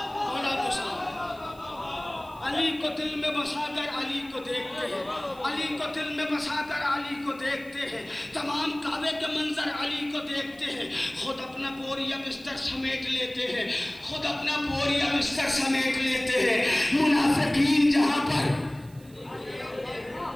अली को दिल में बसाकर अली को देखते हैं, अली को दिल में बसाकर अली को देखते हैं। तमाम काबे के मंजर अली को देखते हैं। खुद अपना बोरिया बिस्तर समेट लेते हैं, खुद अपना बोरिया बिस्तर समेट लेते हैं। मुनाफिकीन जहां पर,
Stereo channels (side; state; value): right; noise; hiss, 26 dB below the sound